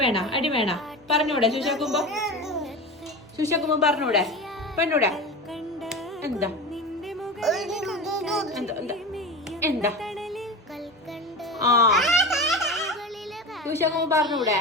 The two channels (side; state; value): both; normal; correlation 0.28